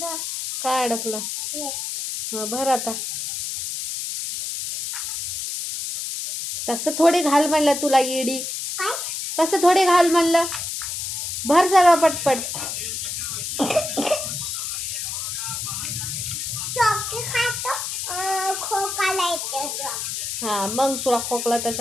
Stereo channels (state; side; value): noise; left; hiss, 4 dB below the sound